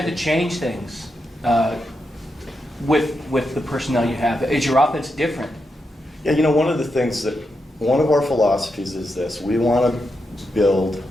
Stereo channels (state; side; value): normal; both; correlation 0.85